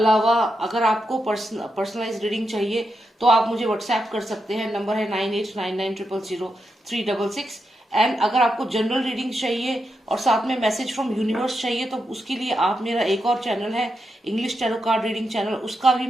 अगर आपको पर्सनलाइज रीडिंग चाहिए तो आप मुझे व्हाट्सएप कर सकते हैं, नंबर है 9899000366। एंड अगर आपको जनरल रीडिंग चाहिए और साथ में मैसेज फ्रॉम यूनिवर्स चाहिए तो उसके लिए आप मेरा एक और चैनल है English tarot card reading channel, उसका भी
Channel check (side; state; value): both; normal; correlation 0.85